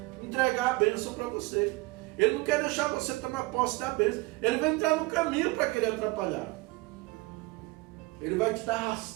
entregar a bênção para você. Ele não quer deixar você tomar posse da bênção. Ele vai entrar no caminho para querer atrapalhar. Ele vai te dar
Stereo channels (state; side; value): quieter; left; 23.5 dB